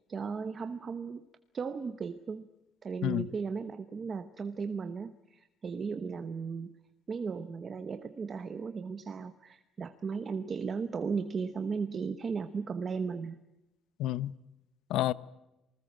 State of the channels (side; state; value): both; normal; correlation 0.72